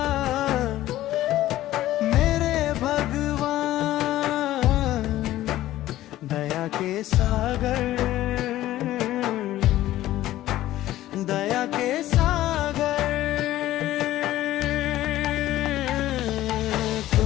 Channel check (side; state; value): right; quieter; 14.7 dB